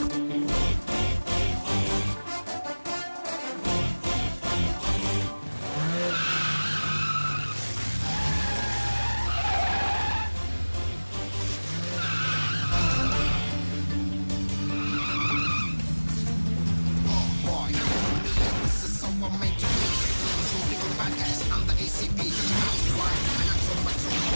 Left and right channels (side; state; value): both; inverted; correlation -1.00